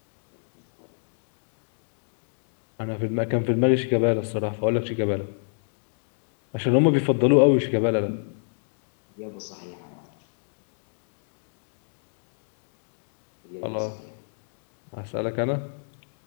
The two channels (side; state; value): right; silent; digital silence